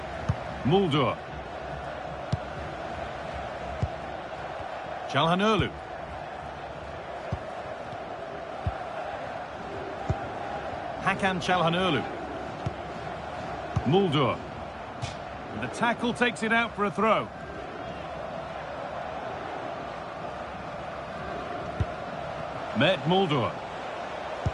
Mulder. KyleMockeXP. KyleMockeXP. Mulder. And the tackle takes it out for a throw. Mulder.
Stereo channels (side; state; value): both; identical; correlation 1.00